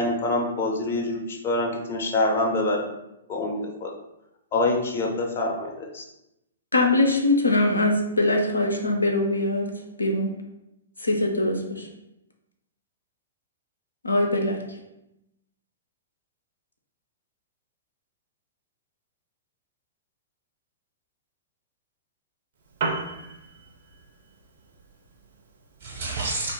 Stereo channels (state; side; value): inverted; both; correlation -0.44